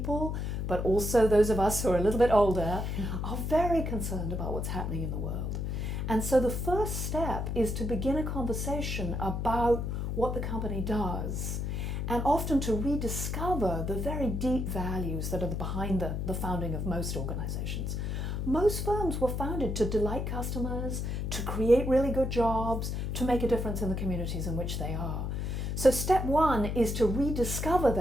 but also those of us who are a little bit older, are very concerned about what's happening in the world. And so the first step is to begin a conversation about what the company does, and often to rediscover the very deep values that are behind the founding of most organizations. Most firms were founded to delight customers, to create really good jobs, to make a difference in the communities in which they are. So step one is to rediscover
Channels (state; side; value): noise; left; hum, 2 dB below the sound